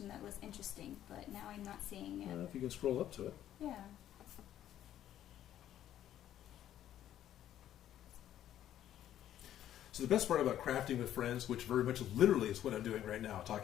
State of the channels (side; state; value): right; quieter; 11.6 dB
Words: that was interesting, but now I'm not seeing it. If you can scroll up to it. Yeah. So the best part about crafting with friends, which very much literally is what I'm doing right now,